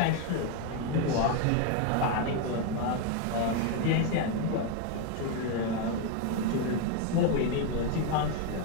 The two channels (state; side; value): different; both; correlation 0.01